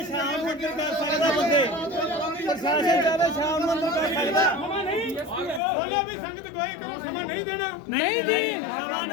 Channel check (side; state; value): right; drops out; at 5.6 s